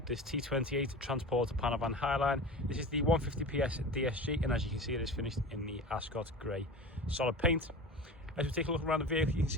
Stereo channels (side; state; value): both; normal; correlation 0.33